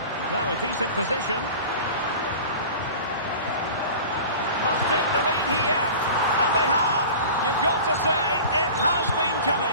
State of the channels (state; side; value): inverted; both; correlation -0.38